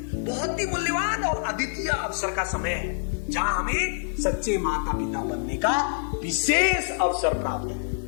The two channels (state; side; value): silent; right; digital silence